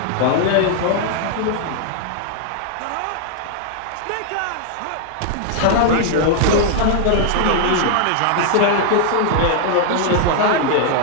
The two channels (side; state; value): both; different; correlation 0.00